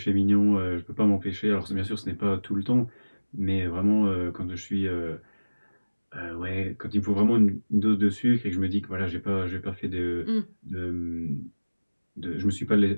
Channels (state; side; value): inverted; both; correlation -1.00